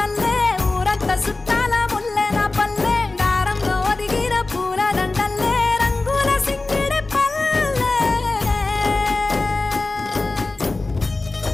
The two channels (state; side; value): quieter; right; 3.3 dB